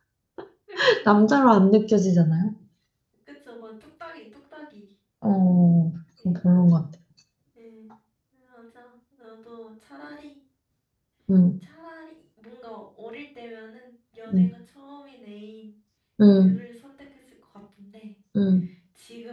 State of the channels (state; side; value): identical; both; correlation 1.00